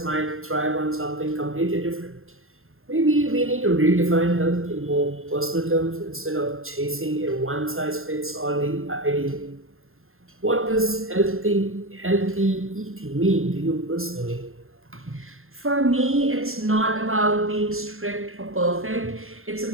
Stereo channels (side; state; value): left; late; 0.61 ms